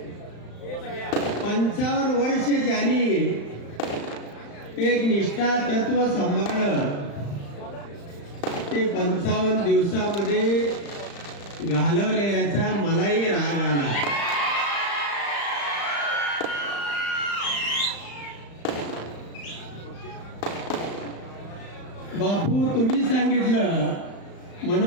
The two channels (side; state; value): right; late; 35 ms